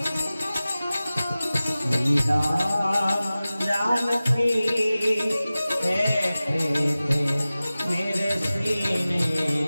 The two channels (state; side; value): inverted; both; correlation -0.97